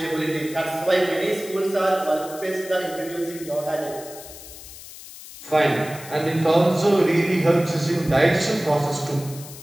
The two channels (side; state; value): left; noise; hiss, 15 dB below the sound